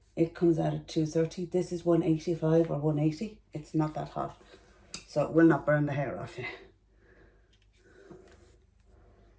It comes out at 230. This is 185 or 180. It's not that hot, so it will not burn the hair off you.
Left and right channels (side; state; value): both; identical; correlation 1.00